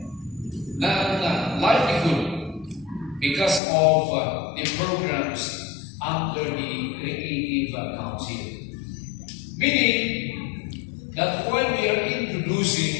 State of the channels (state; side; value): drops out; right; at 3.6 s